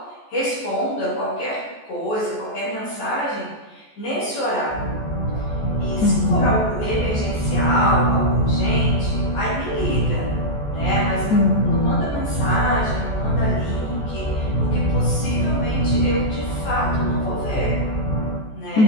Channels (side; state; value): right; late; 14 ms